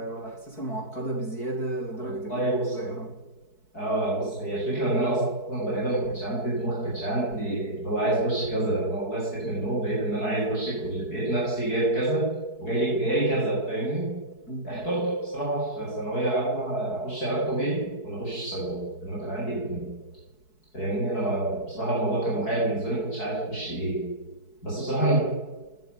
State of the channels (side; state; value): right; late; 4.6 ms